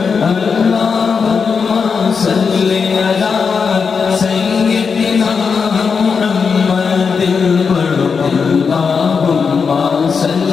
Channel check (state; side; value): quieter; right; 5.6 dB